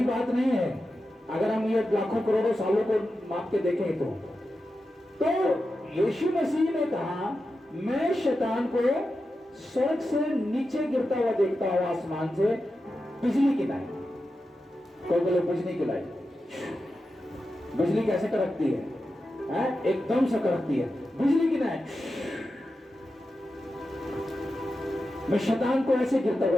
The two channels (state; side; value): normal; both; correlation 0.91